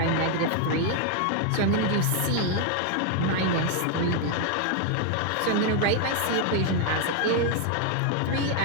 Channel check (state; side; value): different; both; correlation 0.01